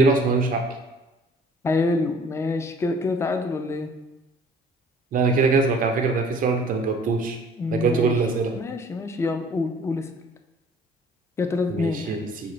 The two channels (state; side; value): normal; both; correlation 0.53